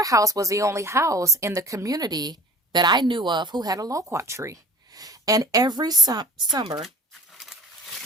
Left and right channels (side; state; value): both; normal; correlation 0.43